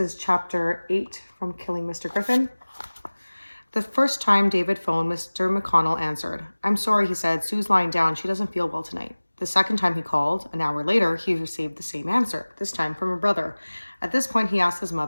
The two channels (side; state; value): both; inverted; correlation -1.00